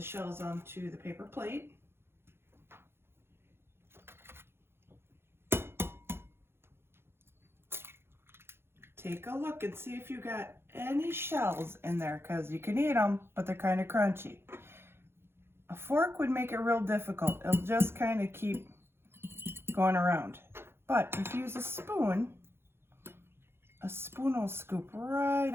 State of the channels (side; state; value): left; late; 0.11 ms